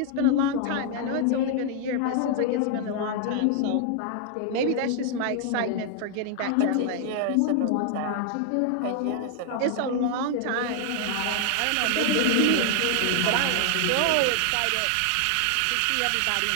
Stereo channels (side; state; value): both; different; correlation 0.00